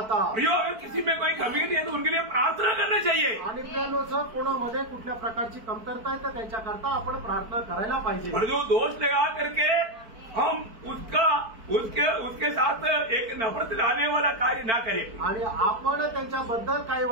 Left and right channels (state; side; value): late; left; 4.5 ms